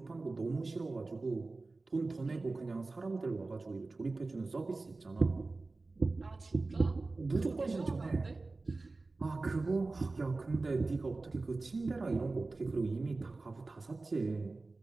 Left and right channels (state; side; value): quieter; left; 3.5 dB